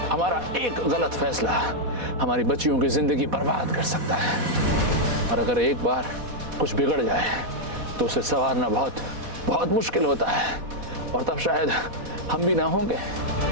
हमारा एक गलत फैसला हमारी बच्चियों की जिंदगी बर्बाद कर सकता है, और अगर एक बार कुछ बिगड़ जाए तो उसे संवारना बहुत बहुत मुश्किल होता है। और तब शायद हम भी ना होंगे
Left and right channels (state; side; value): late; left; 4.1 ms